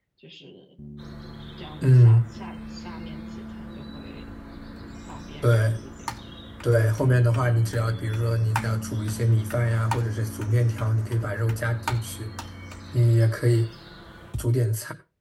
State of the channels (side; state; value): both; identical; correlation 1.00